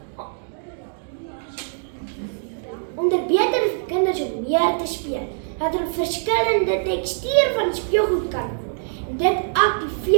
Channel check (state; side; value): silent; left; digital silence